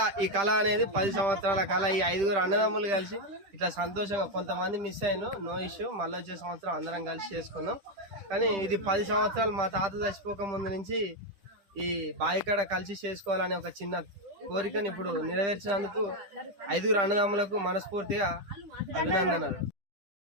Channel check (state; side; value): late; left; 10 ms